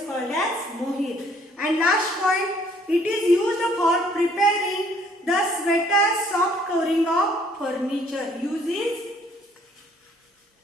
called as mohair. And last point, it is used for preparing the sweater soft covering of furniture. Uses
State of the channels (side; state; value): both; normal; correlation 0.61